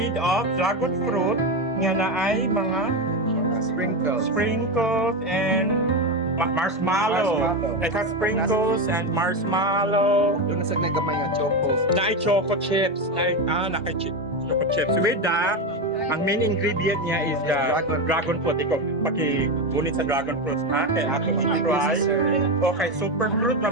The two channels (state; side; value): normal; both; correlation 0.14